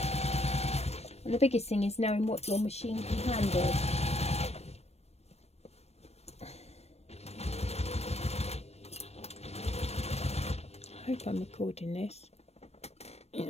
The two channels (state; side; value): late; right; 0.31 ms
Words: And the biggest thing is knowing what your machine can handle. I hope I'm recording this. Yeah.